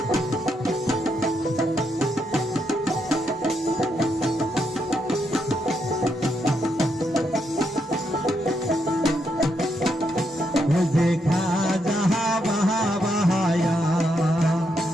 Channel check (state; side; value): normal; both; correlation 0.79